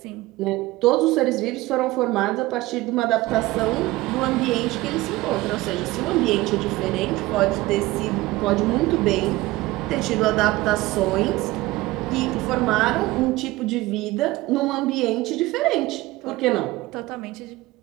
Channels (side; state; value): left; quieter; 19.0 dB